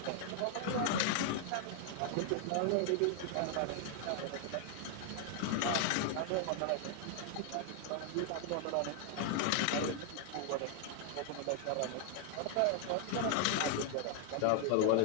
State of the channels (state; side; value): different; both; correlation 0.00